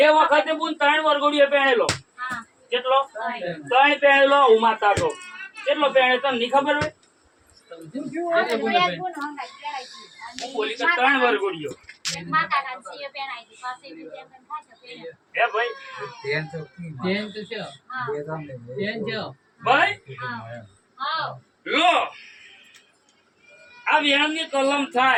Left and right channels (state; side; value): identical; both; correlation 1.00